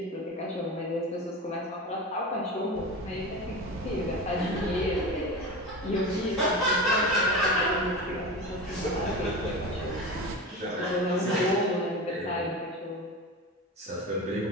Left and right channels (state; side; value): normal; both; correlation 0.27